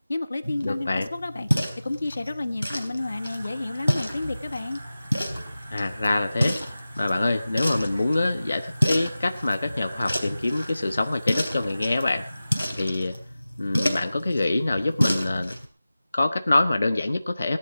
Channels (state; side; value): inverted; both; correlation -0.96